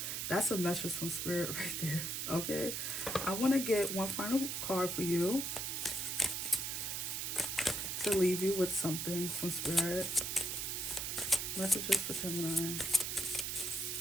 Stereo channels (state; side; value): noise; right; hiss, 2 dB below the sound